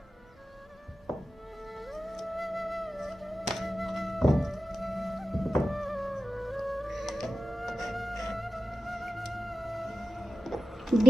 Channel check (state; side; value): normal; both; correlation 0.93